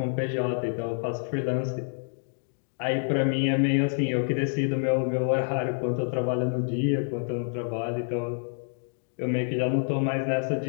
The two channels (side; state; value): right; silent; digital silence